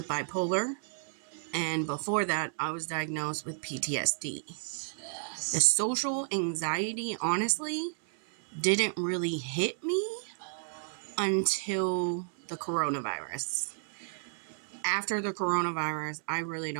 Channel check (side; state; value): left; silent; 56 dB below the other